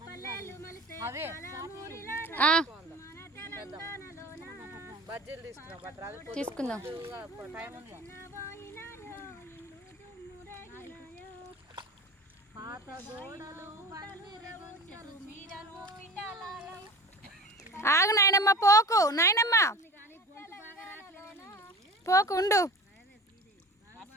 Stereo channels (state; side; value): normal; both; correlation 0.37